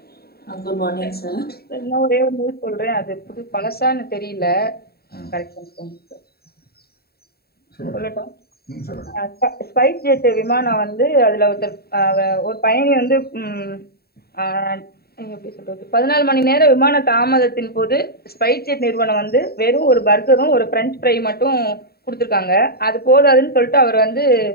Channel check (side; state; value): right; late; 0.45 ms